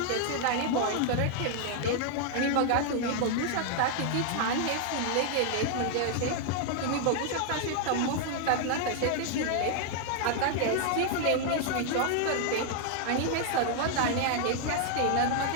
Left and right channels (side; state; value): both; different; correlation 0.00